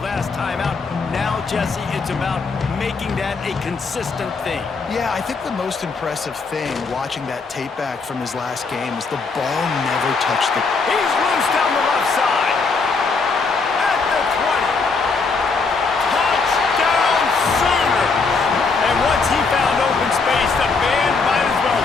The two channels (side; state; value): right; quieter; 4.5 dB